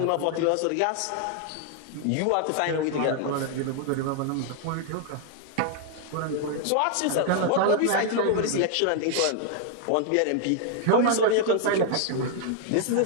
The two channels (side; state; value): both; different; correlation 0.00